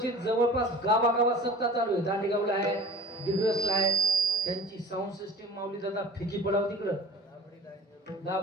जवळपास गावागावात सत्ता चालू आहे. दांडेगावला आहे, दिग्रसला आहे. त्यांची साऊंड सिस्टीम माऊली दादा फिकी पडाव तिकडं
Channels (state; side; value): normal; both; correlation 0.43